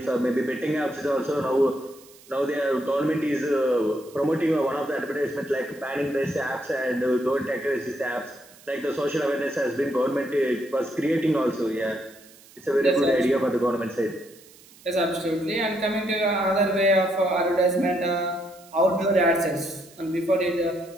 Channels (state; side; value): noise; right; hiss, 24 dB below the sound